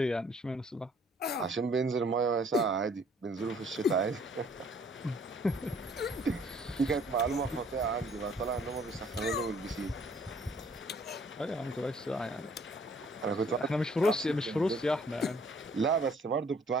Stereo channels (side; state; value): both; normal; correlation 0.60